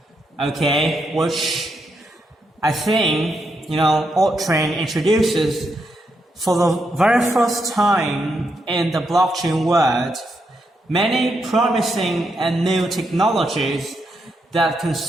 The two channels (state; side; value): normal; both; correlation 0.81